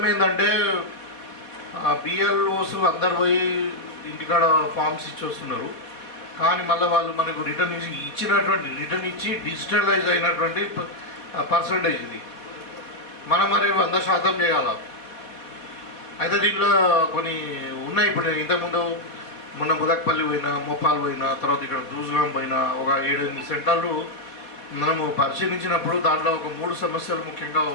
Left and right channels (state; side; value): late; right; 4.1 ms